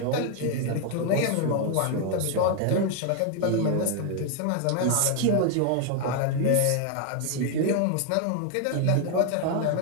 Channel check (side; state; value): both; different; correlation 0.00